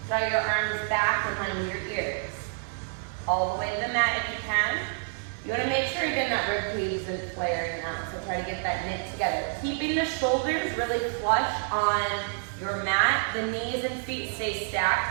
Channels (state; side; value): silent; left; digital silence